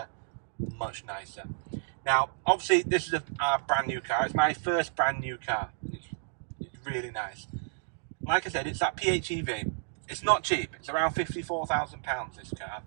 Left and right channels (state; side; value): silent; left; digital silence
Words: much nicer. Now, obviously, this is our brand new car. It's my first brand new car. It's really nice. Like I said, it's that PHEV. It's not cheap. It's around £54,000, this car.